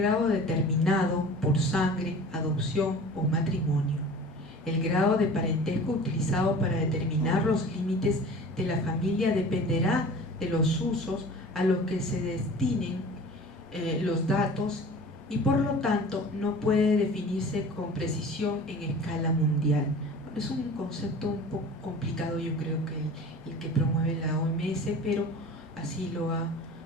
determinado por sangre, adopción o matrimonio. El grado de parentesco utilizado para determinar los límites de la familia dependerá de los usos a los que se destinen los datos y por lo tanto no puede definirse con precisión en escala mundial. Es un concepto un poco complicado, yo creo, que el que promueve la OMS, pero así lo ha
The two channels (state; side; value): normal; both; correlation 0.41